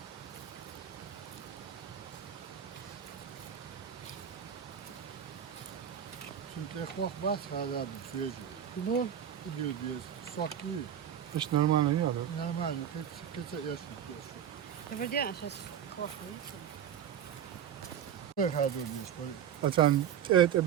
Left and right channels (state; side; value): quieter; left; 9.3 dB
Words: Çünkü korkmaz hala bir süreci. bu. Gidiyor diye sok değil. Hiç normal yok. Normal, keçe yaşmak diyorsun. Подожди, а сейчас плохо, видите? Böyle hadi diyorsun. Böyle. Açan et